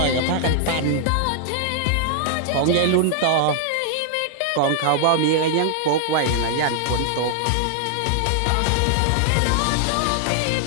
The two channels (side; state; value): both; different; correlation -0.01